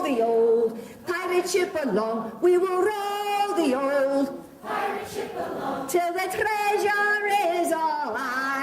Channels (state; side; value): identical; both; correlation 1.00